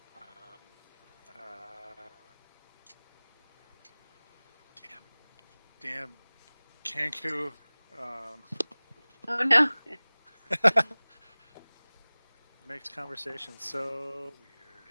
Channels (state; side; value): inverted; both; correlation -1.00